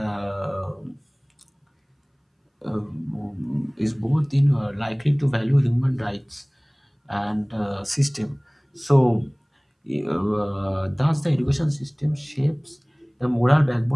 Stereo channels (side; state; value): both; identical; correlation 1.00